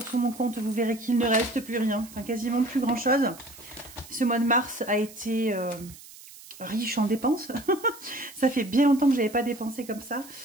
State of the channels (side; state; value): right; noise; hiss, 19 dB below the sound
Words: sur mon compte. Vous verrez qu'il ne reste plus rien. Enfin, quasiment plus grand-chose. Ce mois de mars a été... riche en dépenses. Ça fait bien longtemps que je n'avais pas dépensé comme ça.